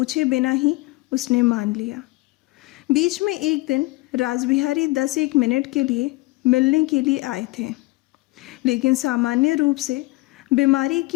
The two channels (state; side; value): quieter; right; 21.8 dB